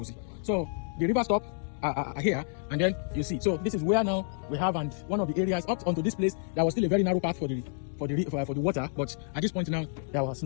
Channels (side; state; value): right; silent; digital silence